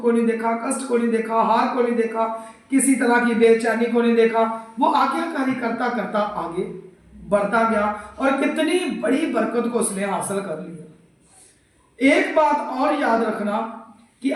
को नहीं देखा, कष्ट को नहीं देखा, हार को नहीं देखा, किसी तरह की बेचैनी को नहीं देखा, वो आज्ञाकारी करता करता आगे बढ़ता गया और कितनी बड़ी बरकत को उसने हासिल कर लिया। एक बात और याद रखना कि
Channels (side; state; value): both; identical; correlation 1.00